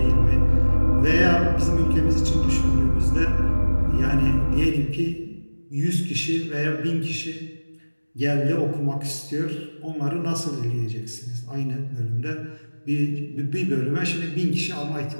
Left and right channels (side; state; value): both; inverted; correlation -1.00